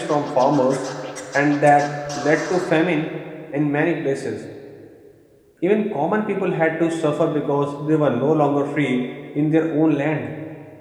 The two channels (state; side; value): identical; both; correlation 1.00